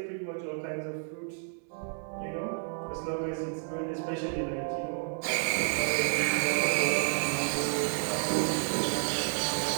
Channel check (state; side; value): silent; left; 55 dB below the other